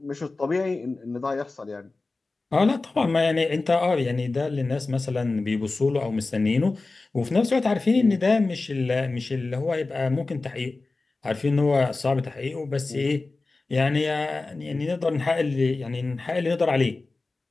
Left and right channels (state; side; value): quieter; right; 3.5 dB